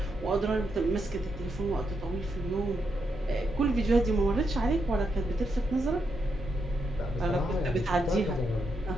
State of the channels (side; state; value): both; normal; correlation 0.82